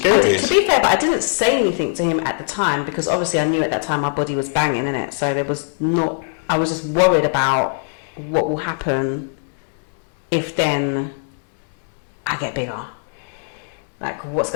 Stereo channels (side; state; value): right; silent; digital silence